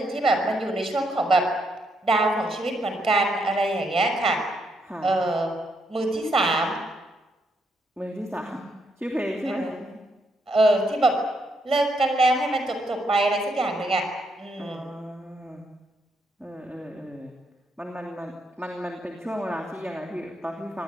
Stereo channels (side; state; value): both; normal; correlation 0.77